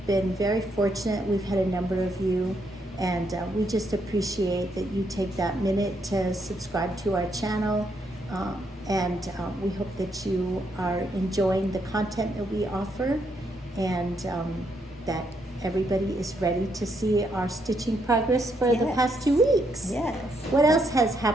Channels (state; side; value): normal; both; correlation 0.76